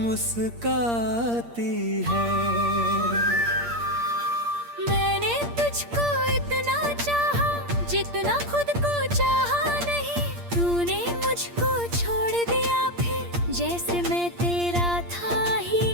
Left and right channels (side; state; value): left; late; 8.6 ms